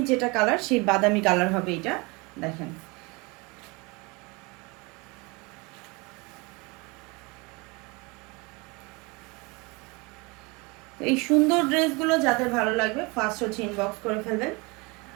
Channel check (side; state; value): left; quieter; 27.0 dB